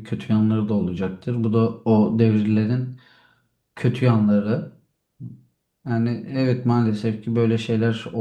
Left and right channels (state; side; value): identical; both; correlation 1.00